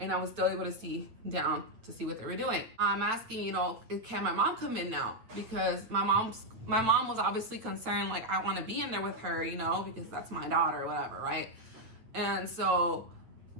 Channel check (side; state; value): left; late; 8.7 ms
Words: I was still able to see down to see what they were doing. I'm asking, you know, can my mom come in now? Because my mom was obviously concerned, like, I want to be in there with her, you know, because that's my daughter or whatever, right? And so